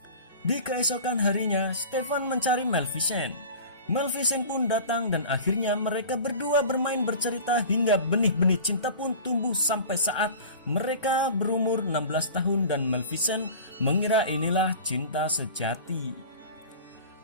Di keesokan harinya Stefan mencari Maleficent. Maleficent pun datang dan akhirnya mereka berdua bermain bercerita hingga benih-benih cinta pun tumbuh sampai saat mereka berumur 16 tahun dan Maleficent mengira inilah cinta sejati.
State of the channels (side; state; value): both; inverted; correlation -0.38